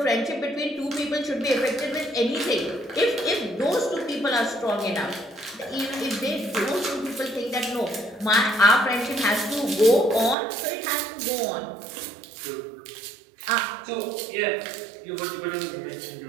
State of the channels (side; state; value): left; drops out; at 10.4 s